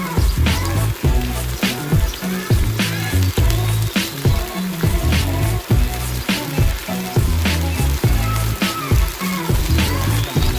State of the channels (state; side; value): identical; both; correlation 1.00